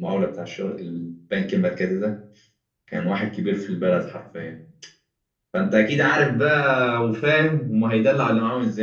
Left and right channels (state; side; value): identical; both; correlation 1.00